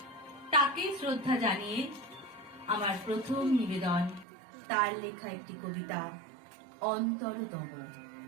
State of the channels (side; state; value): left; drops out; at 4.2 s